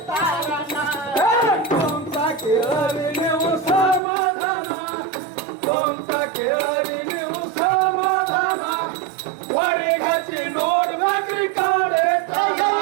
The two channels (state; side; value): drops out; left; at 4.0 s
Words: ಕೇಳರಿ ನೀವು ಸಮಾಧಾನ ಸ್ವಂತ ಕೇಳರಿ ನೀವು ಸಮಾಧಾನ ಹೊಡಿ ಹಚ್ಚಿ ನೋಡ್ಬೇಕ್ರಿ ಕಾಡೆ